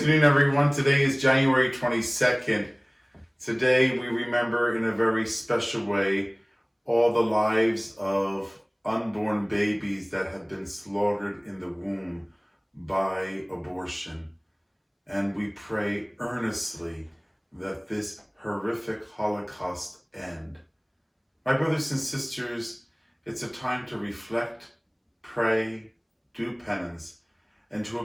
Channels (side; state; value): both; identical; correlation 1.00